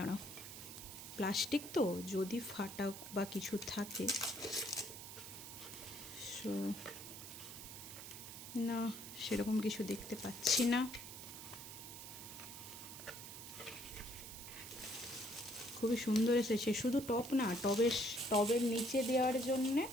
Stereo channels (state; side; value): noise; right; hiss, 11 dB below the sound